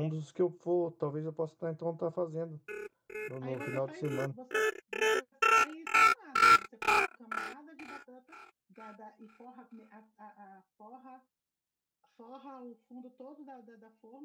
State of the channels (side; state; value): both; identical; correlation 1.00